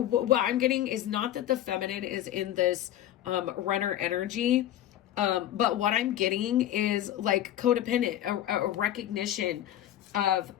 I'm getting is not that the feminine is in this runner energy, but what I'm getting is like codependent, a recognition of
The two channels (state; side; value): quieter; right; 12.4 dB